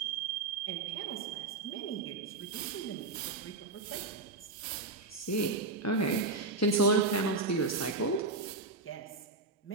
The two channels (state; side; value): quieter; left; 3.5 dB